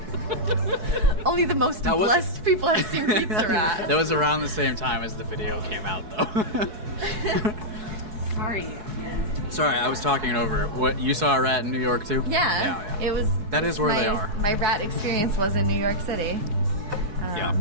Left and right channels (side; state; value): left; late; 4.7 ms